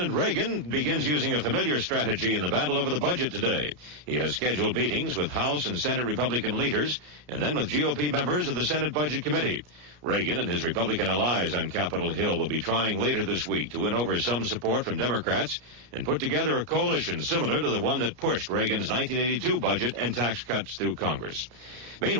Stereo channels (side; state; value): left; late; 33 ms